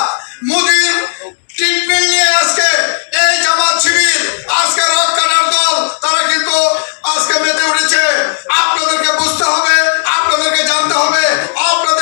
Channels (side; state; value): right; silent; digital silence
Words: মোদির ট্রিটমেন্ট নিয়ে আজকে এই জামাত শিবির, আজকে রক্ষার দল, তারা কিন্তু আজকে মেতে উঠেছে। আপনাদেরকে বুঝতে হবে, আপনাদেরকে জানতে হবে,